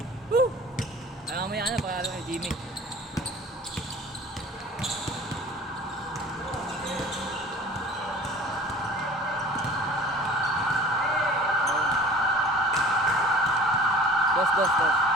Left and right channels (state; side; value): normal; both; correlation 0.44